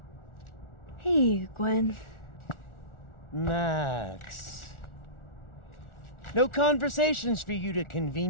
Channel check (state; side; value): late; right; 1.4 ms